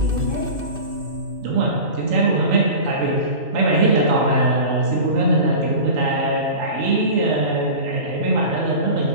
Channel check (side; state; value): left; late; 2.6 ms